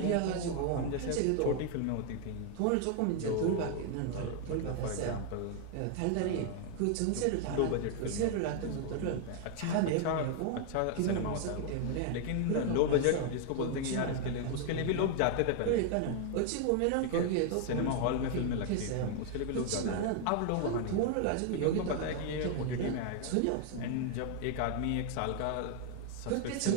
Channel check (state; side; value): different; both; correlation 0.00